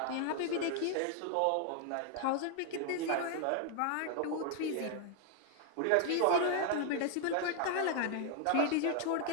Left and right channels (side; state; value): both; different; correlation 0.00